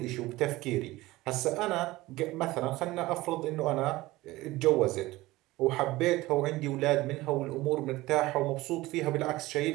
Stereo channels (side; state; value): left; quieter; 18.8 dB